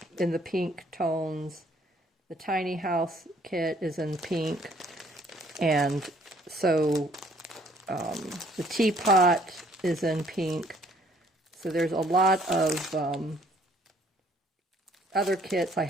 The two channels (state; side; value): normal; both; correlation 0.61